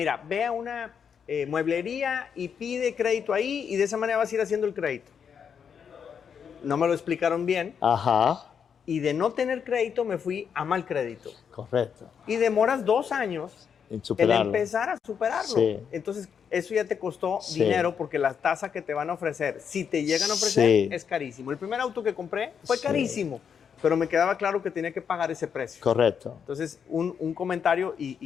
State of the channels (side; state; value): right; quieter; 7.2 dB